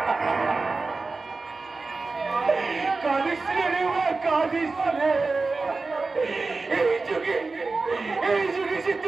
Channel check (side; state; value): left; quieter; 3.8 dB